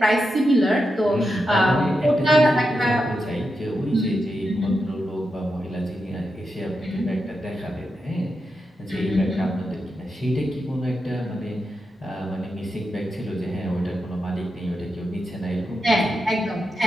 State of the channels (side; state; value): both; normal; correlation 0.87